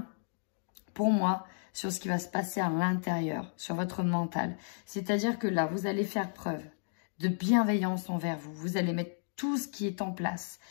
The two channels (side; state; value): right; silent; digital silence